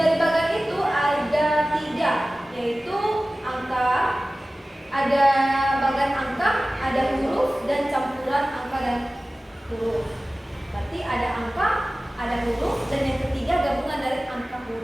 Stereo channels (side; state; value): both; normal; correlation 0.97